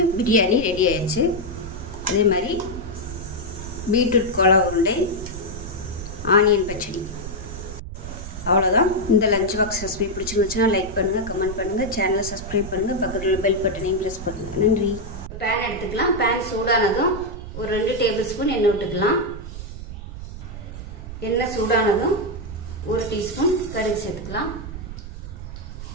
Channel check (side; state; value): right; noise; rumble, 10 dB below the sound